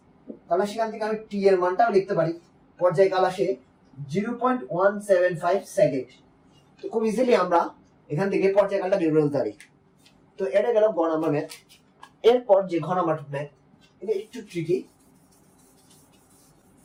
তাহলে সেখান থেকে আমি t এর মানটাও লিখতে পারি, পর্যায়কাল আসে 0.175 সেকেন্ড। তো খুব ইজিলি আমরা এখান থেকে পর্যায়কালটা বের করে ফেলতে পারি। তো এটা গেল গ নাম্বার ম্যাথ। এরপর যে ঘ নাম্বার ম্যাথ, এটা একটু ট্রিকি।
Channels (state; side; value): identical; both; correlation 1.00